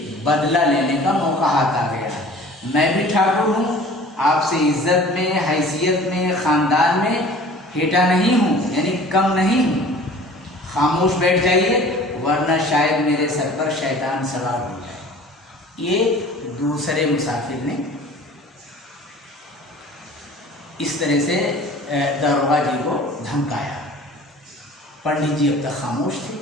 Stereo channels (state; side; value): normal; both; correlation 0.46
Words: बदला लेने का मौका हाथ आ गया। मैं भी ठाकुर हूँ, आपसे इज्जत में, हैसियत में, ख़ानदान में हेटा नहीं हूँ, यानी कम नहीं हूँ। खामोश बैठ जाइए, वरना शायद मेरे सर पर शैतान सवार हो जाए। ये दूसरे मुसाफिर ने इस तरह से दरोगा जी को धमकाया। पंडित जी अब तक खामोश थे,